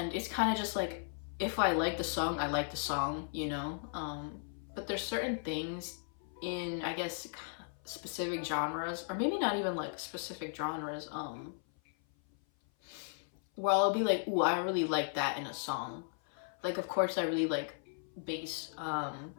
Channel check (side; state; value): right; silent; 54 dB below the other